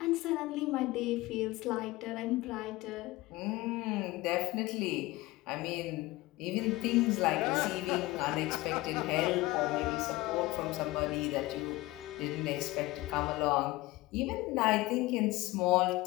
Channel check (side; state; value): right; quieter; 19.6 dB